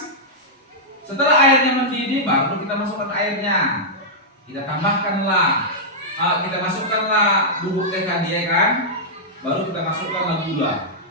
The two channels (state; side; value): normal; both; correlation -0.09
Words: Setelah airnya mendidih, baru kita masukkan airnya. Kita tambahkanlah, kita masukkanlah bubuk teh tadi, ya kan? Baru kita masukkanlah gula.